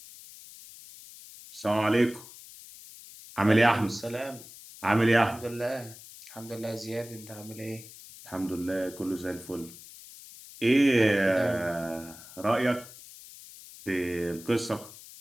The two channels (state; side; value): noise; left; hiss, 17 dB below the sound